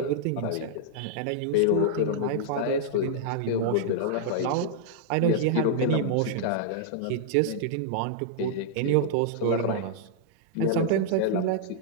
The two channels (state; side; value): different; both; correlation -0.01